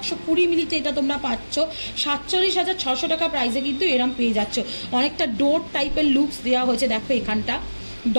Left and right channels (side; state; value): both; inverted; correlation -1.00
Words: মিলিতে এটা তোমরা পাচ্ছ 47,600 টাকা প্রাইসে কিন্তু এরম পেয়ে যাচ্ছ। অনেকটা ডোর টাইপের লুকস দেওয়া হয়েছে, দেখো এখানটা